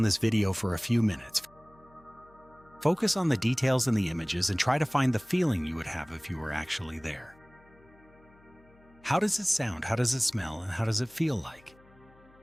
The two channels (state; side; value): noise; left; hum, 28 dB below the sound